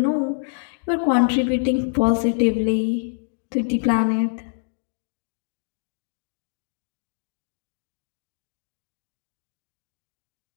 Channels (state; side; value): silent; right; digital silence